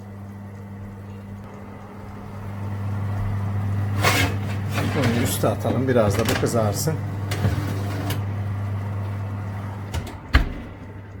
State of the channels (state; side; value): identical; both; correlation 1.00